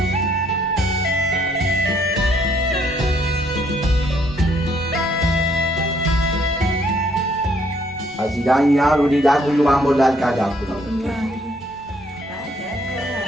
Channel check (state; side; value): normal; both; correlation 0.67